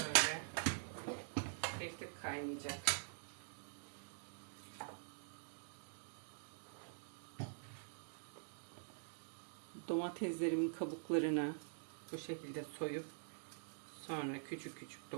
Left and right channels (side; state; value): left; silent; digital silence